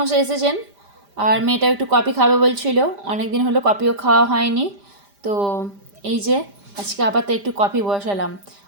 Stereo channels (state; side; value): late; left; 5.0 ms